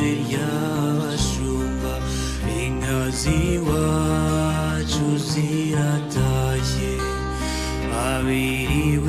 ry'abashumba, inka z'iwacu ziratashye,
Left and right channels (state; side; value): identical; both; correlation 1.00